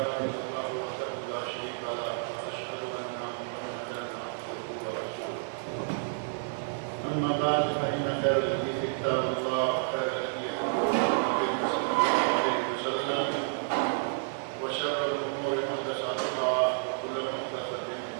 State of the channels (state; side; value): silent; left; digital silence